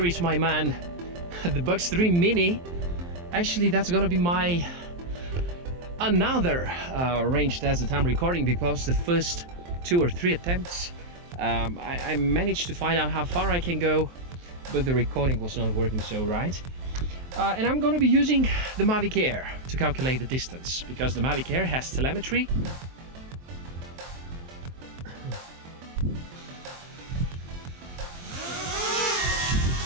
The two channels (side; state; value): left; late; 23 ms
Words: is my man, the Bugs 3 Mini. Actually, that's gonna be my another range test that I'm recording, because the first 2 or 3 attempts I managed to find out how far I can go, but the recording was not working so right. And I'm gonna be using the Mavic Air to calculate the distance, because the Mavic Air has telemetry.